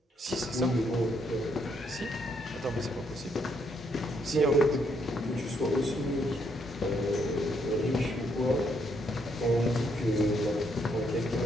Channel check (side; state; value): both; normal; correlation 0.73